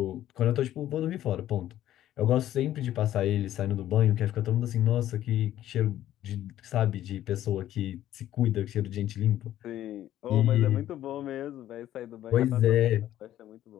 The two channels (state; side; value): quieter; right; 12.7 dB